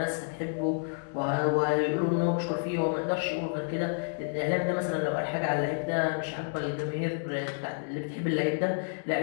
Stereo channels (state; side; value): silent; right; digital silence